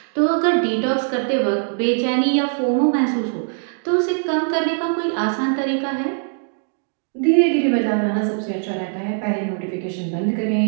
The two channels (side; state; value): left; silent; digital silence